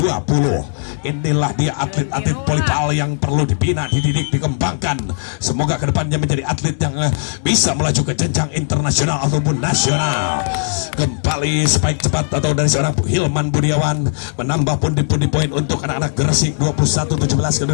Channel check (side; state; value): right; silent; digital silence